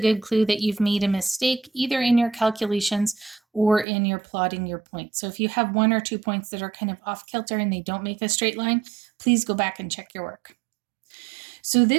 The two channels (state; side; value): drops out; left; at 3.9 s